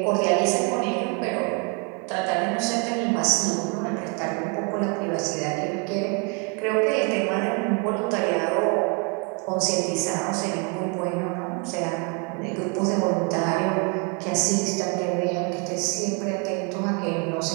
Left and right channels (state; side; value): quieter; left; 35.0 dB